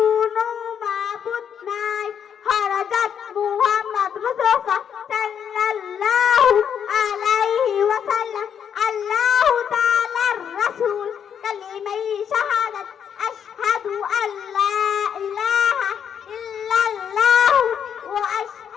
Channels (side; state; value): right; quieter; 8.2 dB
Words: মাবুদ নাই। হযরত মুহাম্মদ মুস্তাফা সাল্লাল্লাহু আলাইহি ওয়াসাল্লাম আল্লাহু তাআলার রাসূল। কালিমাই শাহাদাত আশহাদু আল্লা ইলাহা ইল্লাল্লাহ ওয়া